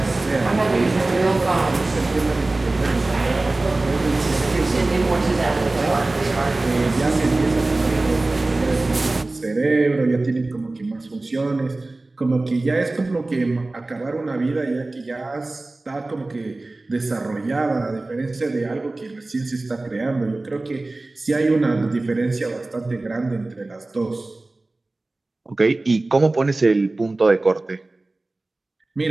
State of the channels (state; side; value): quieter; left; 3.0 dB